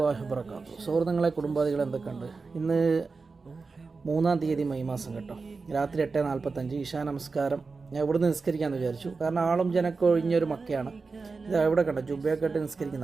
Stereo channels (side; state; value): left; quieter; 4.3 dB